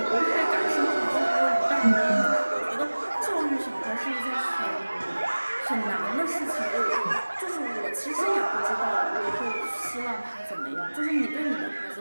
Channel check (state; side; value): inverted; both; correlation -1.00